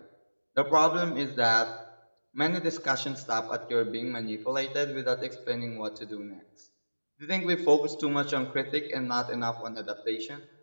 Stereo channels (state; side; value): inverted; both; correlation -1.00